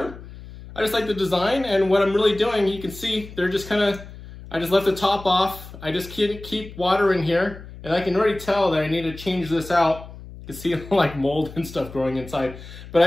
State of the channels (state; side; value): noise; left; hum, 15 dB below the sound